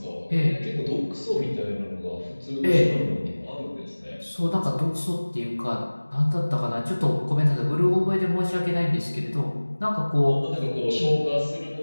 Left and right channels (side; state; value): both; inverted; correlation -1.00